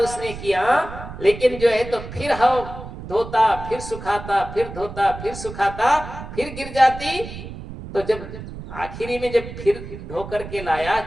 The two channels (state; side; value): noise; right; rumble, 11 dB below the sound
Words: किया, लेकिन जो है तो फिर हवा धोता, फिर सुखाता, फिर धोता, फिर सुखाता, फिर गिर जाती। तो जब आखिरी में जब फिर धो करके लाया,